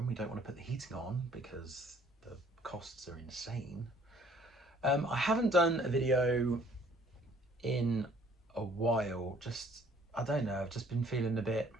we don't want to put the heating on because the costs are insane. I haven't done a video in a while, I don't know, I've just been feeling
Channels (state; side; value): normal; both; correlation 0.58